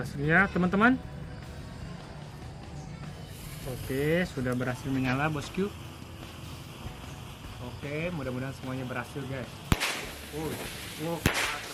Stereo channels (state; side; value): identical; both; correlation 1.00